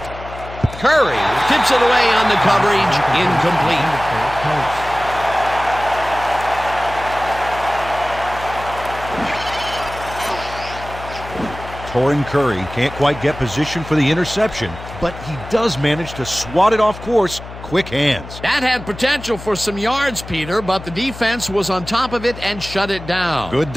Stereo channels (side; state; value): left; noise; hum, 13 dB below the sound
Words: Curry tips it away on the coverage, incomplete. Torrin Curry can't quite get position for the interception, but he does manage to swat it off course. Quick hands. That had potential for some yards, Peter, but the defense was on top of it and shut it down. Good